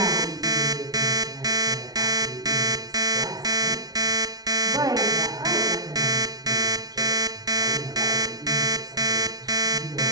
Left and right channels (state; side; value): late; left; 0.19 ms